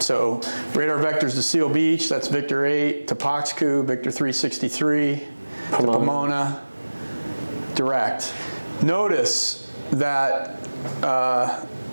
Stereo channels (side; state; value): both; inverted; correlation -1.00